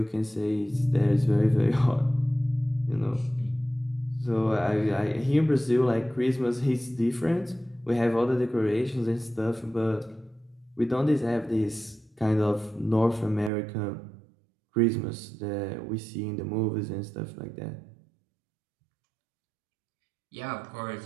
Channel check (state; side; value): drops out; left; at 13.5 s